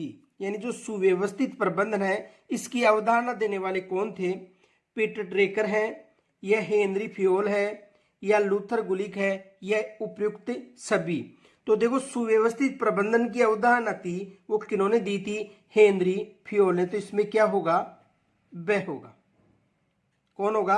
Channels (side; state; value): both; identical; correlation 1.00